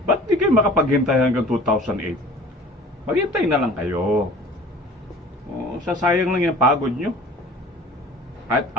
Ba't di kayo makapaghintay hanggang 2008? Maghintay na lang kayo. Sasayang lang yung pagod nyo. At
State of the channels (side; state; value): both; normal; correlation 0.45